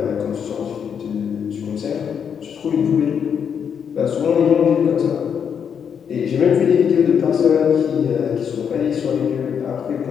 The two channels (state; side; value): quieter; right; 7.5 dB